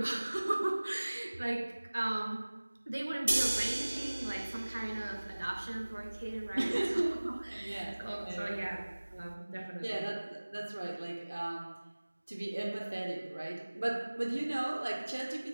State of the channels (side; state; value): both; inverted; correlation -1.00